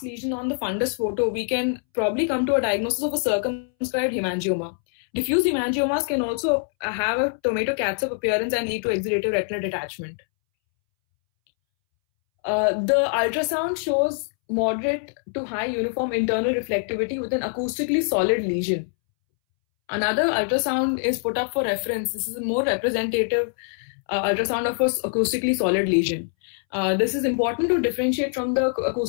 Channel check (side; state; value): right; silent; 63 dB below the other